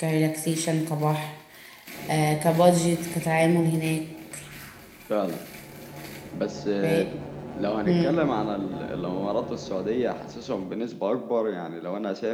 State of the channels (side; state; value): both; identical; correlation 1.00